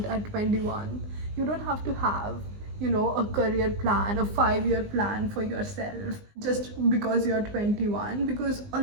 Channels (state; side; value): late; left; 19 ms